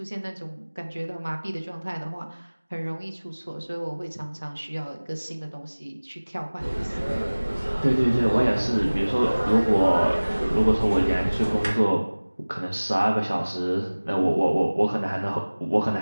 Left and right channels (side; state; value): both; inverted; correlation -1.00